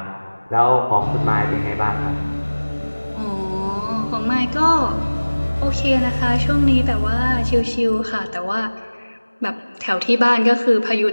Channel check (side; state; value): both; inverted; correlation -1.00